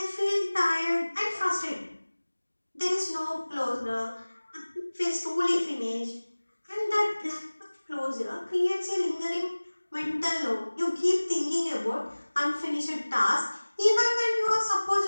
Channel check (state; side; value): inverted; both; correlation -1.00